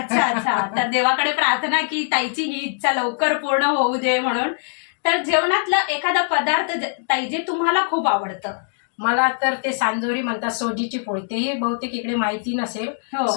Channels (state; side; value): silent; right; digital silence